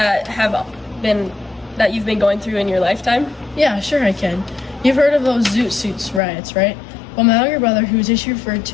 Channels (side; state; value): right; drops out; at 6.2 s